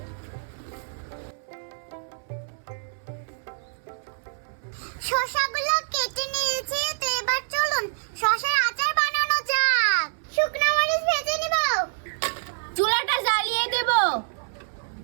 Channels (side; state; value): left; silent; 61 dB below the other